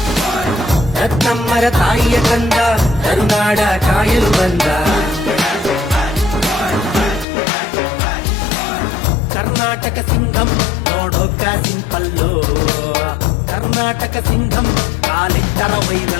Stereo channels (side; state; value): right; drops out; at 7.2 s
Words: ರತ್ನಮ್ಮರ ತಾಯಿಯ ಕಂದ ಕರುನಾಡ ಕಾಯಲು ಬಂದ. ಕರ್ನಾಟಕ ಸಿಂಗಂ ನೋಡೋಕ ಸಿಂಪಲ್ಲು, ಕರ್ನಾಟಕ ಸಿಂಗಂ ಕಾಲಿಟ್ಟರ